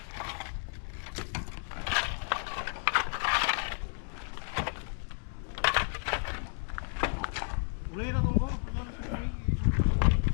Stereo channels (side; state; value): right; silent; 56 dB below the other